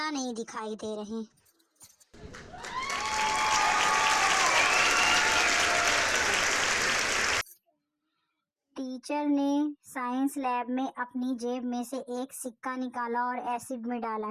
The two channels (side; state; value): both; identical; correlation 1.00